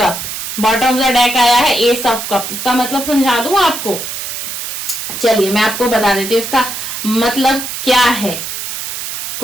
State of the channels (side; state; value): right; noise; hiss, 6 dB below the sound